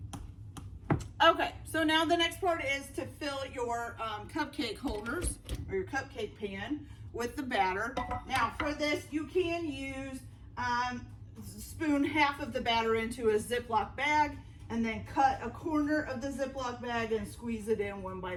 Okay, so now the next part is to fill your cupcake holders or your cupcake pan with the batter. Now for this, you can use, spoon half of the batter into a Ziploc bag and then cut a corner of the Ziploc bag and squeeze it in one by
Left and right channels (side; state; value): both; identical; correlation 1.00